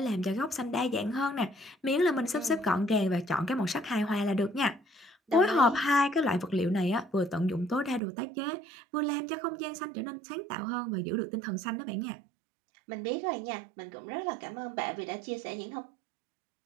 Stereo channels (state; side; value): drops out; left; at 8.0 s